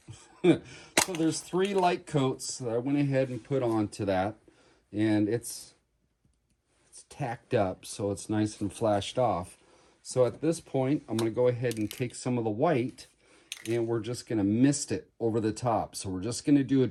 So there's 3 light coats that I went ahead and put onto that. And it's tacked up, so it's nice and flashed off. So at this point, I'm going to go ahead and take some of the white, and we're just going to mist it over the top. So we're just going to do a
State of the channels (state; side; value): identical; both; correlation 1.00